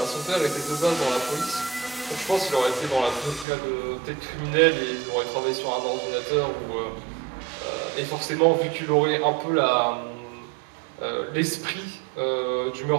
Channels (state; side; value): drops out; left; at 3.5 s